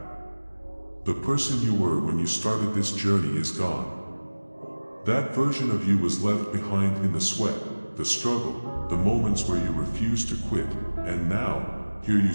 The person you were when you started this journey is gone. That version of you was left behind in the sweat, the struggle, the moments where you refused to quit, and now, here you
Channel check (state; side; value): inverted; both; correlation -1.00